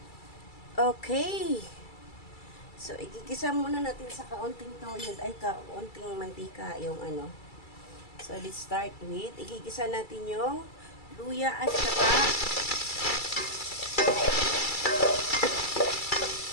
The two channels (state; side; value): late; right; 2.3 ms